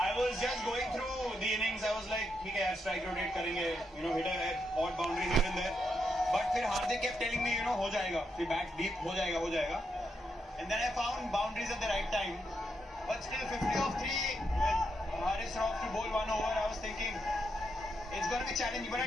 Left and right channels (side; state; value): both; normal; correlation 0.82